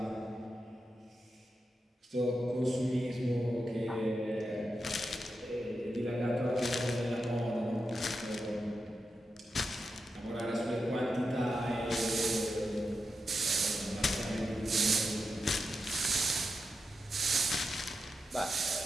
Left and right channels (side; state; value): both; normal; correlation 0.88